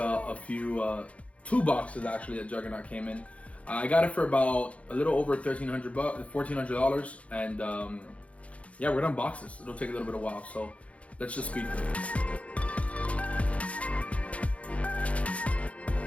few, 2 boxes actually that Juggernaut came in. I got it for about a little over $1,400, and yeah, we're gonna unbox this. It'll take a little bit of while, so let's just speed through it.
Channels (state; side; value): late; right; 0.064 ms